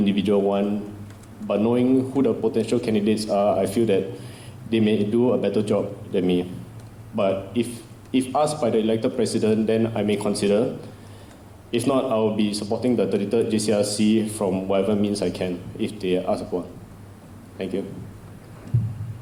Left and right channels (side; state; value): both; identical; correlation 1.00